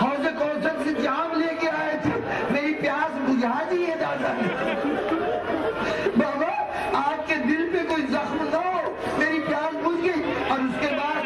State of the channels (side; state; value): both; identical; correlation 1.00